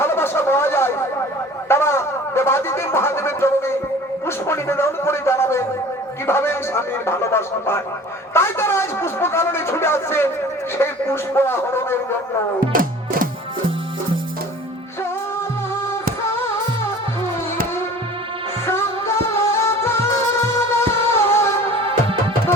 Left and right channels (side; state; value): both; normal; correlation 0.44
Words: ভালোবাসা পাওয়া যায়, তারা দেবাদিদেব মহাদেবের চরণে পুষ্প নিবেদন করে জানাবেন কিভাবে স্বামীর ভালোবাসা পায়। তাই তারা আজ পুষ্প কাননে ছুটে আসছে সেই পুষ্প আহরণের জন্য।